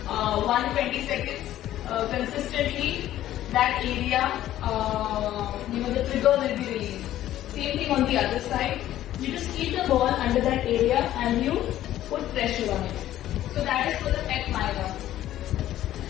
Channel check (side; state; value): right; quieter; 13.1 dB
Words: 120 seconds consistently, that area, the trigger will be released. Same thing on the other side. You just keep the ball under that area and you put pressure on it. So that is for the pec minor.